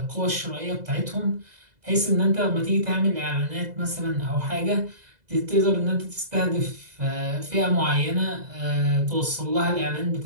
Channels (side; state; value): left; late; 2.0 ms